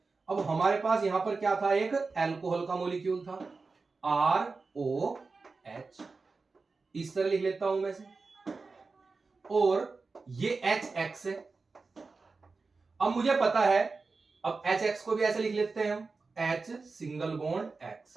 अब हमारे पास यहां पर क्या था, एक अल्कोहल का मॉलिक्यूल था ROH, इस तरह लिख लेता हूं मैं से, और ये HX है। अब मुझे पता है, अब HX को भी ऐसे लिख लेते हैं हम, H सिंगल बॉन्ड X,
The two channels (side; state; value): left; quieter; 4.1 dB